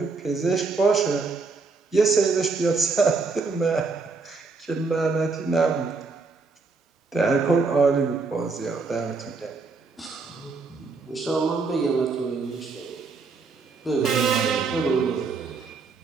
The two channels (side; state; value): left; quieter; 4.3 dB